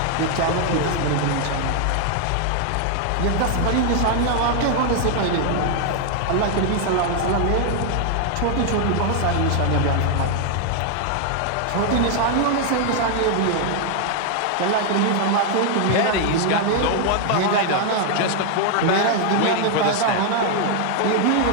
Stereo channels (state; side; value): different; both; correlation 0.00